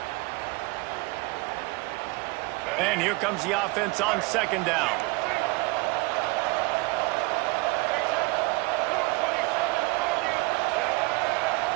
And here comes the offense on second down.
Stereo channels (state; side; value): quieter; left; 24.5 dB